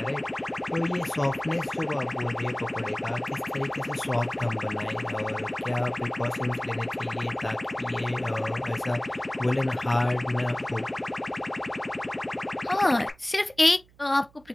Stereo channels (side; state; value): right; noise; hum, 29 dB below the sound